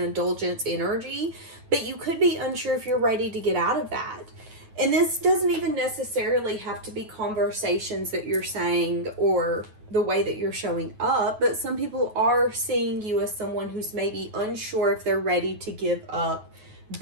energy, but you could be unsure if you're ready to get out of that. And this doesn't even necessarily have to be conversations that you're saying or the way that you're showing up, but some people are seeing you as someone who's maybe unsure if they're ready to give up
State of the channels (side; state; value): left; late; 9.3 ms